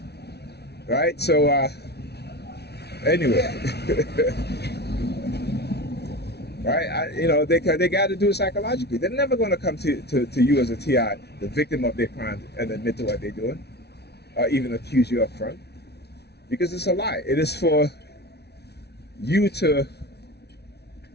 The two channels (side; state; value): right; late; 0.49 ms